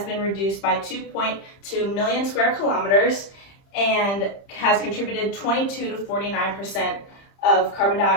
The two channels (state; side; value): late; right; 30 ms